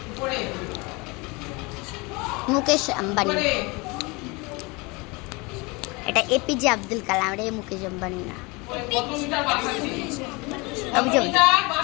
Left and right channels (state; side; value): quieter; right; 26.5 dB